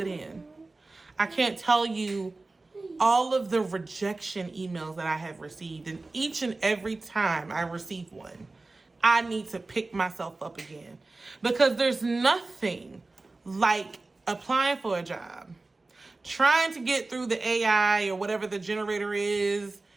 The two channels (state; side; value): quieter; left; 3.3 dB